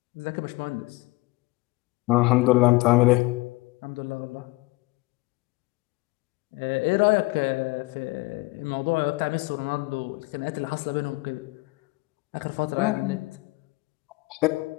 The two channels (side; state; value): right; quieter; 22.7 dB